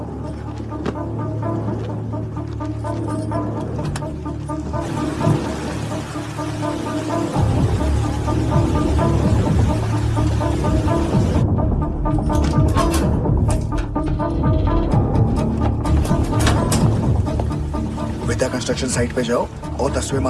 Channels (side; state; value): both; identical; correlation 1.00